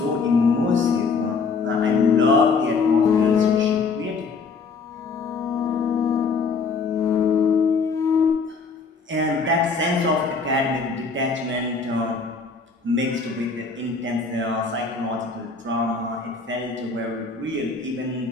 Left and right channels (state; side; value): quieter; right; 4.7 dB